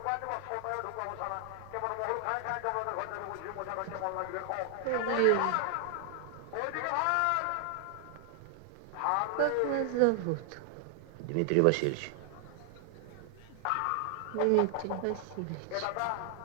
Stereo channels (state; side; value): different; both; correlation 0.00